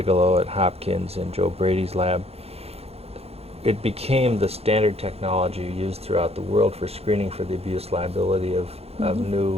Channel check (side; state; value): left; late; 0.29 ms